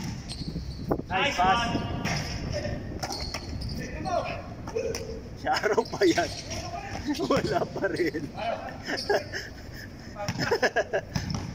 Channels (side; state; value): both; identical; correlation 1.00